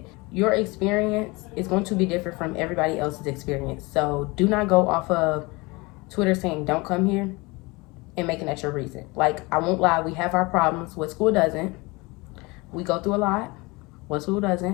Your experience is going to be different from everybody else's experience. So do not go off of Twitter saying don't come here and making that your reason. Like, I won't lie, we have our problems. What school doesn't? We go through a lot. What school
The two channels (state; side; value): quieter; right; 25.0 dB